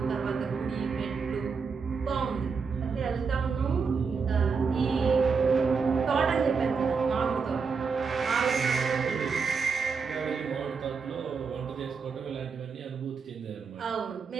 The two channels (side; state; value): left; quieter; 5.3 dB